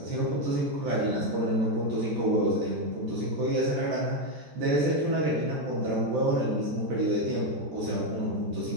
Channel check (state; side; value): late; left; 14 ms